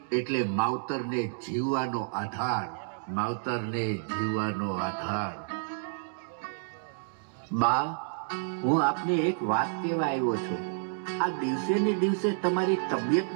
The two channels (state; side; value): silent; left; digital silence